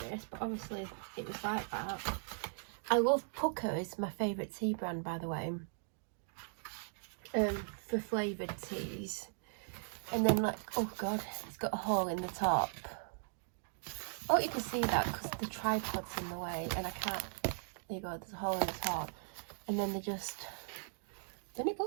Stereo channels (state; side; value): silent; left; digital silence